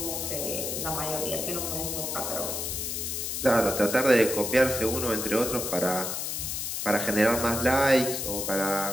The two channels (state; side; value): noise; left; hiss, 3 dB below the sound